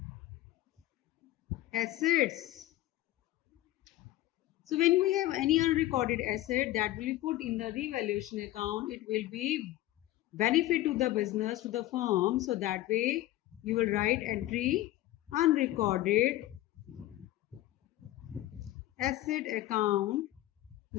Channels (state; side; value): quieter; right; 15.5 dB